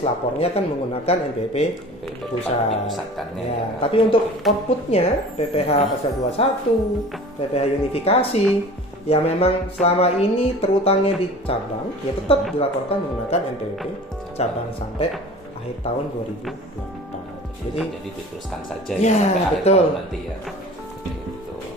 lapornya kan menggunakan NPWP pusat ya. Tapi untuk outputnya PPh pasal 21, PPh unifikasi yang memang selama ini terutangnya di cabang ya tetap dilaporkan menggunakan NPWP cabang sampai akhir tahun 2024. Jadi diteruskan saja ya sampai akhir tahun nanti ya. Gitu.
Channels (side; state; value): both; normal; correlation 0.41